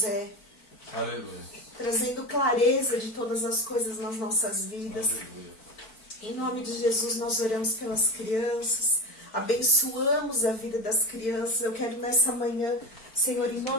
é, Aleluia. trazendo clareza de todas as coisas nas nossas vidas. Aleluia. Em nome de Jesus nós oramos pelas crianças, abençoamos a vida das crianças. Eu quero nessa manhã, Senhor, em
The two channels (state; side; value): late; right; 4.5 ms